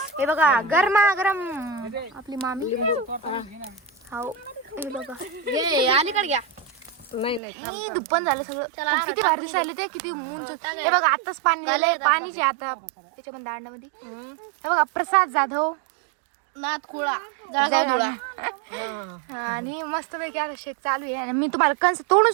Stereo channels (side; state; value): left; drops out; at 7.4 s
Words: हे बघा गरम आपली मामी. हो हे बघा अलीकडे घ्या. नाही दुप्पन झालं सगळं. किती भारी दिसायले ते, किती उंच. हे बघा आताच पाणी दिलंय, पाणीचे आता त्याच्यामध्ये दांडामध्ये. हे बघा प्रसाद जाधव नाथ खुळा आणि मस्त पैकी आता शेक चालू आहे. आणि मी तुम्हाला कंस तोडून